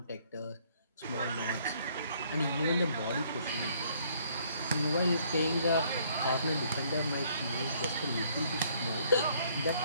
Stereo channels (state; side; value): inverted; both; correlation -0.64